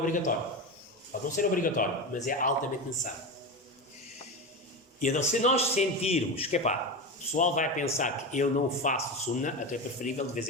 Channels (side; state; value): both; normal; correlation 0.21